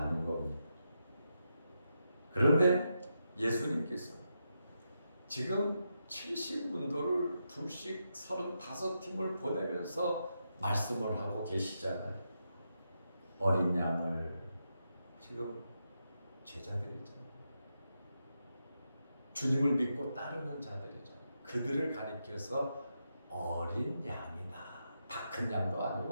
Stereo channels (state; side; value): inverted; both; correlation -0.85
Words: 겁니다. 그런데 예수님께서 지금 70분도를 둘씩 35팀을 보내면서 말씀을 하고 계시잖아요. 어린 양을 지금 제자들이 있잖아요. 주님을 믿고 따르는 자들이잖아요. 그들을 가리켜서 어린 양이다. 다 큰 양도